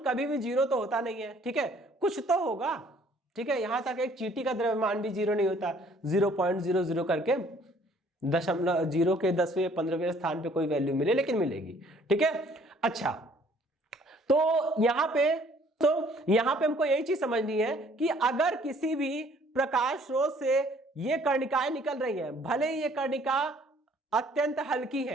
कभी भी जीरो तो होता नहीं है। ठीक है, कुछ तो होगा। ठीक है, यहां तक एक चींटी का द्रव्यमान भी जीरो नहीं होता, 0.00 करके 0 के 10वें 15वें स्थान पे कोई वैल्यू मिले, लेकिन मिलेगी। ठीक है, अच्छा, तो यहां पे हमको यही चीज समझनी है कि अगर किसी भी प्रकाश स्रोत से ये कर्णिकाएं निकल रही हैं, भले ही ये कर्णिका अत्यंत हल्की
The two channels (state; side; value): normal; both; correlation 0.59